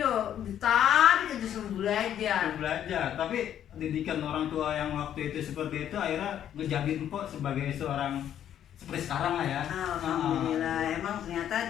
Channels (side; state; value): right; quieter; 10.3 dB